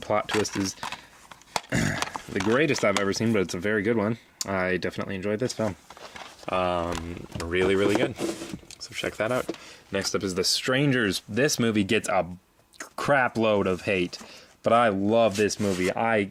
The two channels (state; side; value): identical; both; correlation 1.00